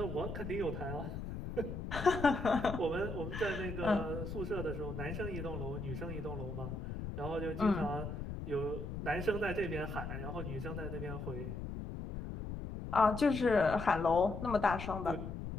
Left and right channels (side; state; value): left; noise; rumble, 6 dB below the sound